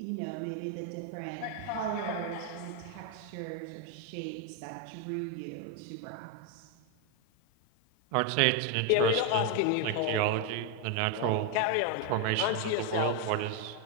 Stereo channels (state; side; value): different; both; correlation 0.01